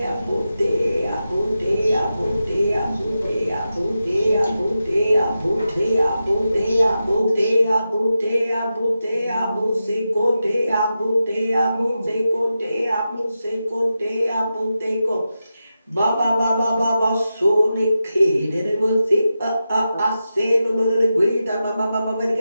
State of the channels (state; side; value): inverted; both; correlation -0.90